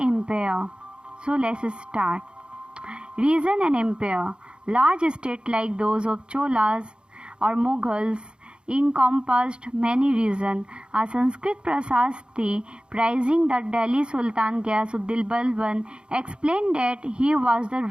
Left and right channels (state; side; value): late; left; 0.053 ms